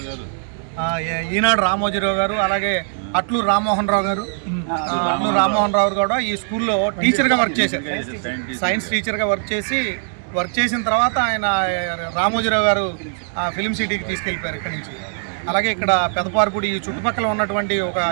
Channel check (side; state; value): left; silent; digital silence